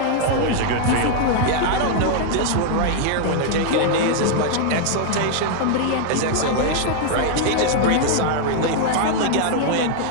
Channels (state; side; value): different; both; correlation 0.00